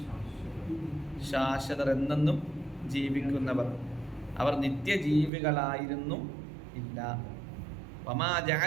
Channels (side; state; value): left; drops out; at 5.3 s